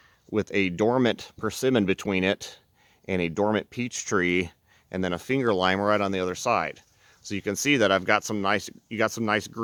dormant persimmon between it and a dormant peach tree and then a finger lime right on the other side. So you can see that I've got you got some nice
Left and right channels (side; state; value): both; identical; correlation 1.00